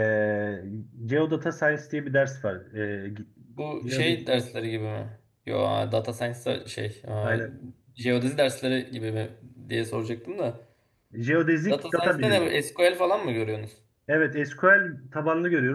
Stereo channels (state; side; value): identical; both; correlation 1.00